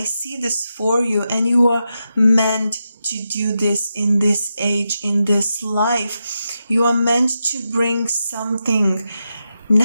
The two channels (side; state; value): both; inverted; correlation -0.87